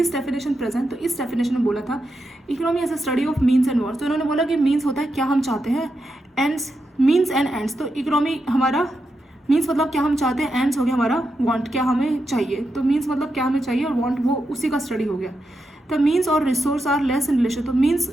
डेफिनेशन प्रेजेंट, तो इस डेफिनेशन में बोला था economy as a study of means and words. तो इन्होंने बोला कि मीन्स होता है क्या हम चाहते हैं, एंड्स मीन्स एंड एंड्स। तो इकोनॉमी हमारा मीन्स मतलब क्या हम चाहते हैं, एंड्स हो गया हमारा वांट, क्या हमें चाहिए। तो मीन्स मतलब क्या हमें चाहिए और वांट वो उसी का स्टडी हो गया। द मीन्स और resource are less in relation, तो मीन्स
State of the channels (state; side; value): normal; both; correlation 0.86